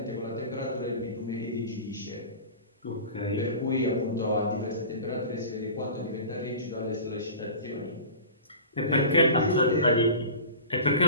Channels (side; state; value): both; inverted; correlation -0.36